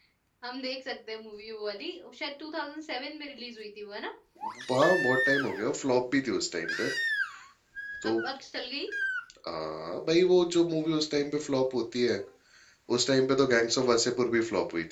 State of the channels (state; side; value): identical; both; correlation 1.00